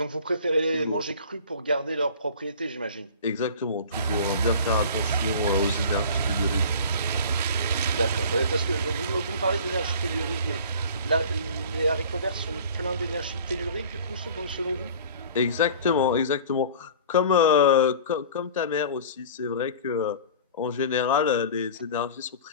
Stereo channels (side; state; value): both; inverted; correlation -0.42